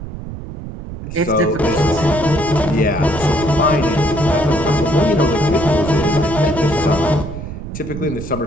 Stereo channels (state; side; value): noise; right; rumble, 10 dB below the sound